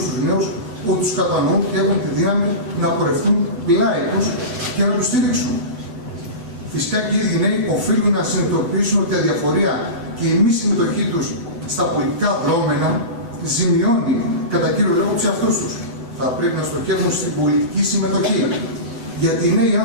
στους νέους ότι τους κατανοούν και έχουν τη δύναμη να πορευτούν πλάι τους και να τους στηρίξουν. Φυσικά και οι ίδιοι νέοι οφείλουν να συνειδητοποιήσουν ότι η αδιαφορία και η μη συμμετοχή τους στα πολιτικά δρόμενα ζημιώνει κατά κύριο λόγο τους εαυτούς τους. Θα πρέπει να στοχεύουν στην πολιτική συμμετοχή, γιατί οι νέοι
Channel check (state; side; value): late; left; 8.1 ms